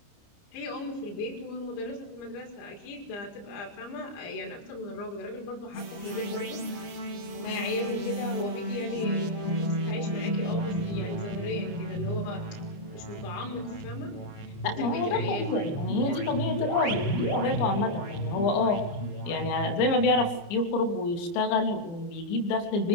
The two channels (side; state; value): right; late; 29 ms